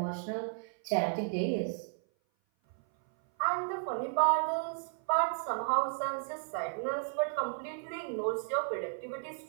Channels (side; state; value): left; silent; 55 dB below the other